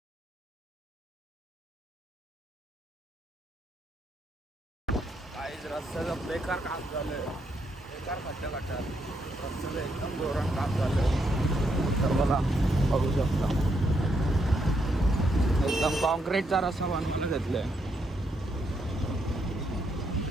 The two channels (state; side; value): normal; both; correlation 0.77